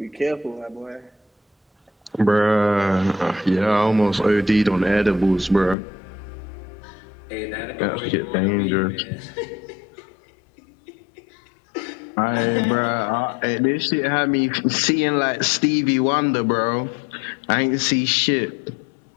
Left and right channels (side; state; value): right; drops out; at 5.8 s